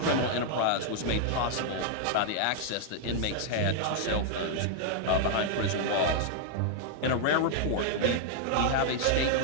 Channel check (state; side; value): different; both; correlation -0.01